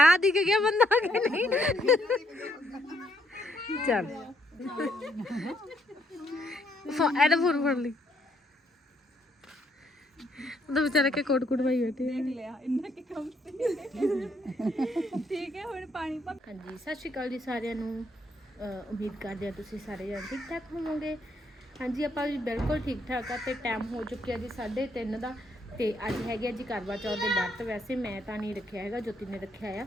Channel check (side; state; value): both; normal; correlation 0.72